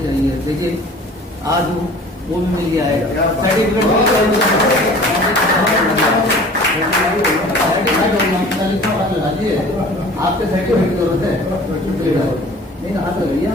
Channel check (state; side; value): normal; both; correlation 0.45